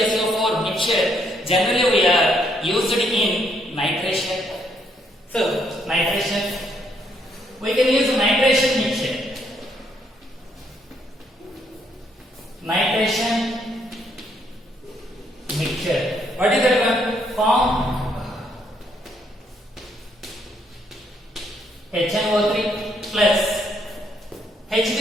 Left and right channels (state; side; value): normal; both; correlation 0.72